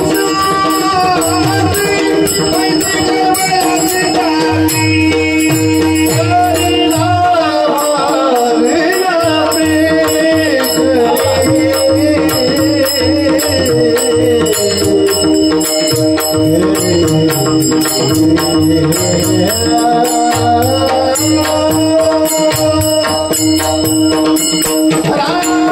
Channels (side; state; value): both; identical; correlation 1.00